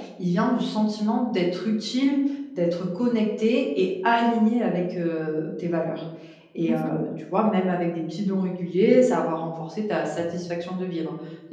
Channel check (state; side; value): identical; both; correlation 1.00